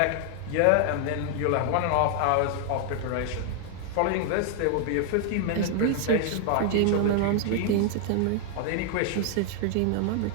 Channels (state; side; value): different; both; correlation 0.00